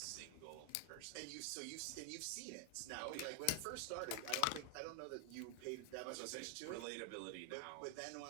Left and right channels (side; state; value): both; different; correlation 0.01